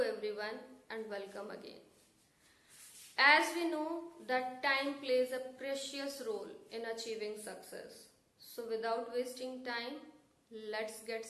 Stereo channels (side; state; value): both; identical; correlation 1.00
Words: and welcome again. As we know that time plays a precious role in achieving success. So without wasting time, let's get